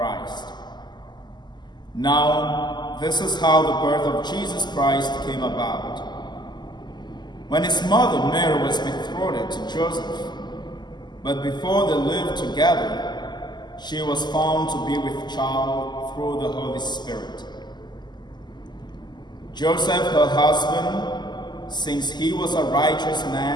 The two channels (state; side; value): late; right; 0.21 ms